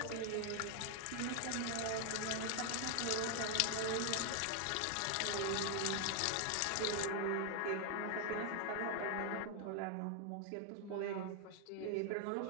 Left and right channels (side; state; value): both; different; correlation 0.00